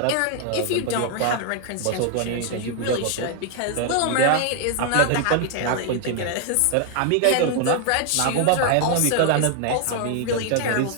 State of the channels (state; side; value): different; both; correlation 0.00